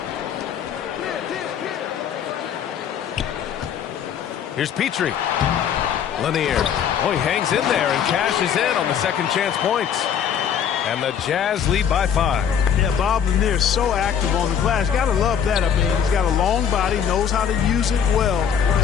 Here's Petrie. Lanier. Oh, he hangs in there and cashes in on the second chance points. And the Jazz lead by 5. Yeah, Bob Lanier is so active on the glass. Got to love that. I mean, he's got a long body, knows how to use it well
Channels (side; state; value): right; quieter; 8.2 dB